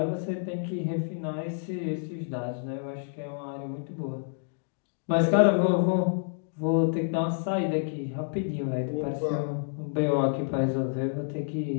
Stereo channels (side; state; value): right; silent; digital silence